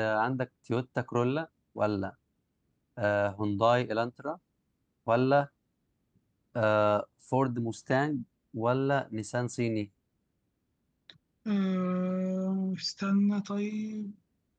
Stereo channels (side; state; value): both; identical; correlation 1.00